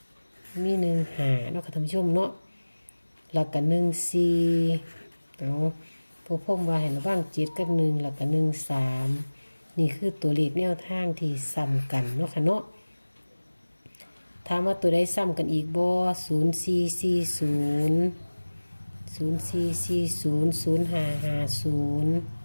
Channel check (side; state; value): both; inverted; correlation -1.00